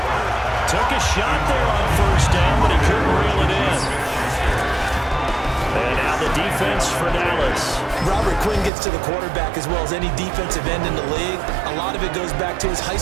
Took a shot there on 1st down, but he couldn't reel it in. And now the defense for Dallas. Robert Quinn gets to the quarterback as well as any defensive end in the league. A lot of it goes back to his high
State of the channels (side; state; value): left; drops out; at 8.7 s